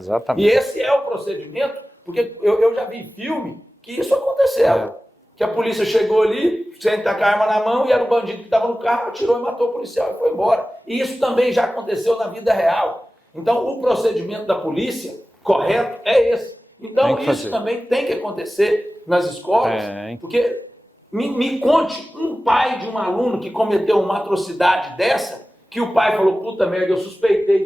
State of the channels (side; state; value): both; normal; correlation 0.96